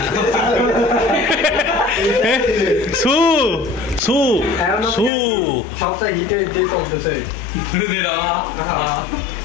সু সু সু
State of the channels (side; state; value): right; drops out; at 5.1 s